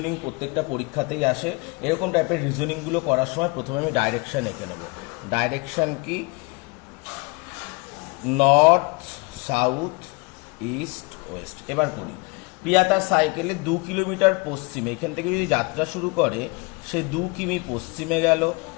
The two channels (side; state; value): right; quieter; 27.9 dB